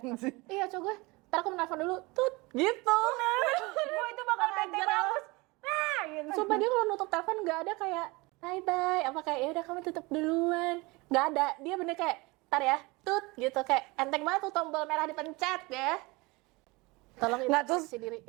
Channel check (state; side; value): quieter; left; 24.4 dB